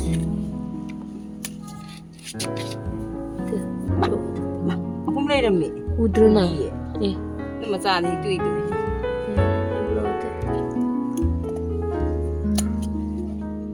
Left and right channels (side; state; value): both; identical; correlation 1.00